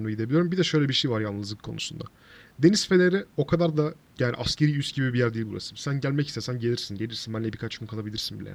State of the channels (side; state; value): both; identical; correlation 1.00